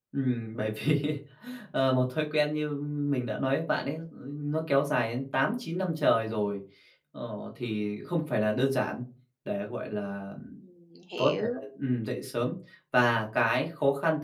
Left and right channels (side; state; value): both; identical; correlation 1.00